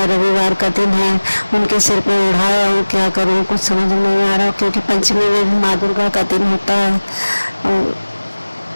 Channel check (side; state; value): both; inverted; correlation -1.00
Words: रविवार का दिन है, उनके सिर पे उड़ाया हूँ, क्या करूँ कुछ समझ में नहीं आ रहा, क्योंकि पंचमी में भी माँ दुर्गा का दिन होता है। और